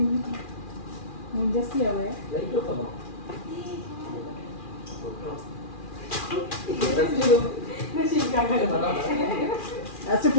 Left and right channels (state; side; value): late; right; 2.4 ms